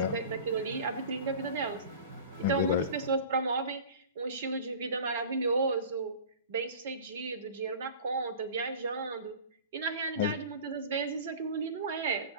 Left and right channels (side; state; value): both; inverted; correlation -0.39